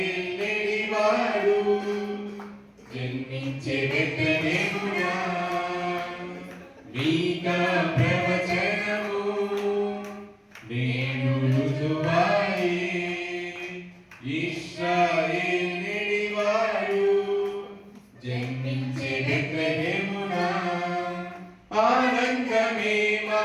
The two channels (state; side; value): identical; both; correlation 1.00